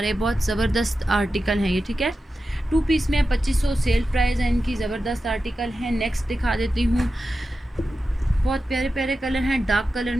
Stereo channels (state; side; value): normal; both; correlation 0.92